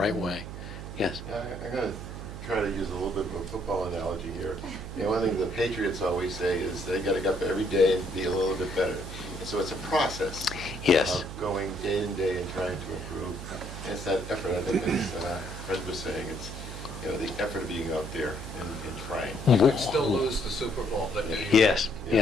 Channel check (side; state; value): right; noise; hum, 9 dB below the sound